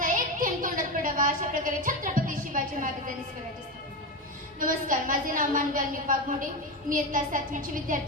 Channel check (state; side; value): normal; both; correlation 0.17